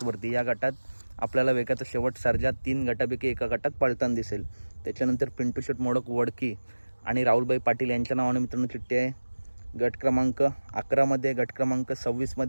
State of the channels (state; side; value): inverted; both; correlation -1.00